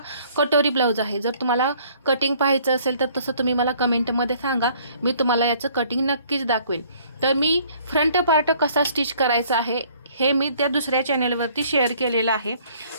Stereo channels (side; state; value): both; inverted; correlation -0.59